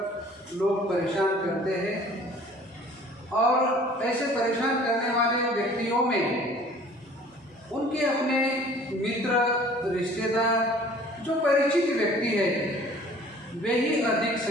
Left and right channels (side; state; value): both; normal; correlation 0.51